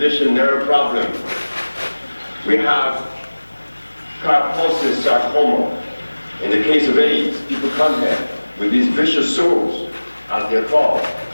nerve problem. We have Kaposis sarcoma. In the case of AIDS, people come here with these vicious sores, as they're called,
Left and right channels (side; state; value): both; inverted; correlation -1.00